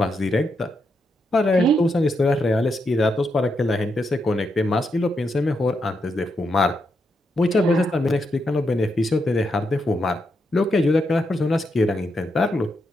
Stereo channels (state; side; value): normal; both; correlation 0.82